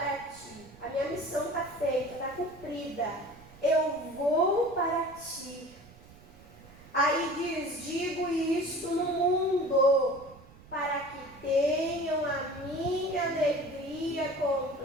ti. A minha missão está feita, está cumprida. Eu vou para ti. Aí diz, digo isto no mundo, para que tenham a minha alegria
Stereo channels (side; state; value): right; noise; rumble, 22 dB below the sound